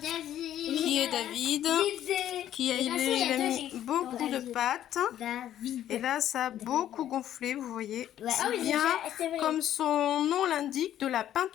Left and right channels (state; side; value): quieter; right; 11.5 dB